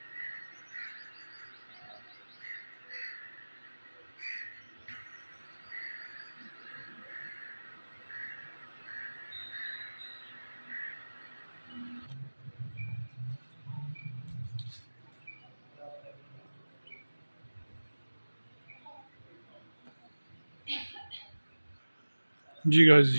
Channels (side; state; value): both; inverted; correlation -1.00